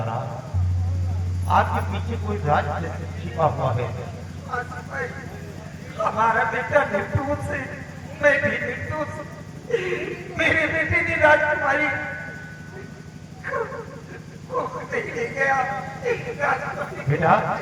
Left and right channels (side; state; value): both; identical; correlation 1.00